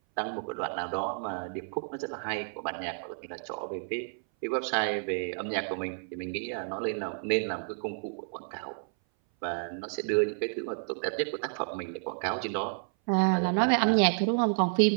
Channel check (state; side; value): silent; left; 57 dB below the other